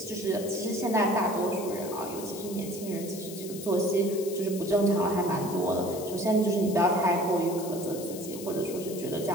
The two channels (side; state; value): left; noise; hiss, 13 dB below the sound